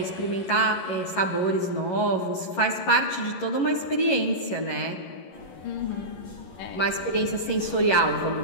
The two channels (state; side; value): late; right; 11 ms